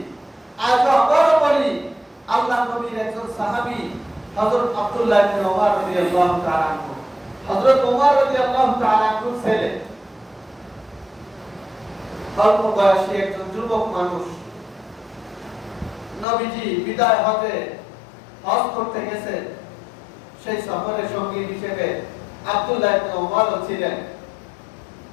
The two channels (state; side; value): drops out; right; at 16.2 s